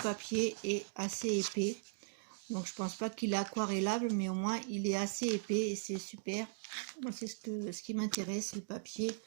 est assez épais. Donc je pense pas qu'il est aquarellable, mais au moins il est assez épais et c'est super. C'est ce qui m'intéresse, le papier.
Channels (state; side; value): silent; left; digital silence